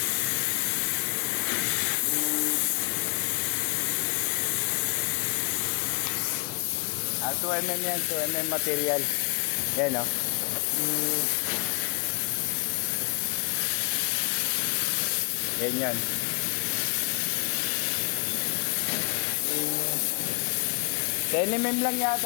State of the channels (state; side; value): quieter; right; 33.0 dB